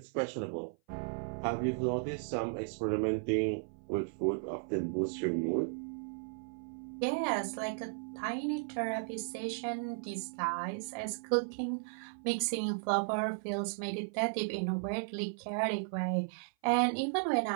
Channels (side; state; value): left; silent; 54 dB below the other